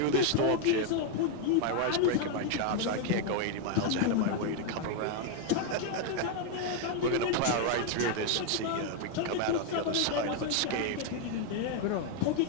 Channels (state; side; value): different; both; correlation 0.01